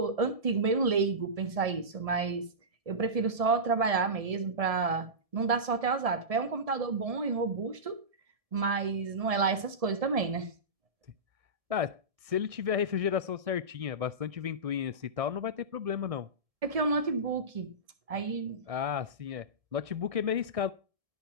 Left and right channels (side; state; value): left; late; 1.7 ms